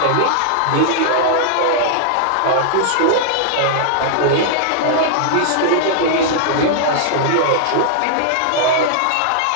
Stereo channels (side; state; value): both; different; correlation -0.01